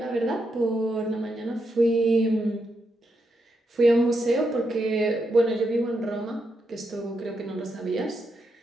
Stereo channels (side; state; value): both; normal; correlation 0.83